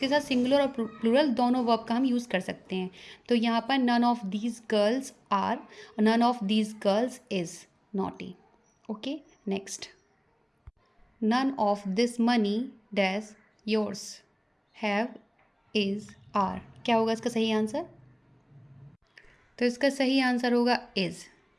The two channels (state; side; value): identical; both; correlation 1.00